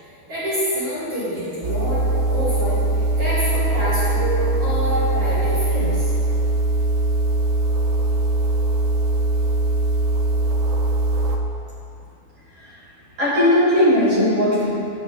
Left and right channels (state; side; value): late; left; 12 ms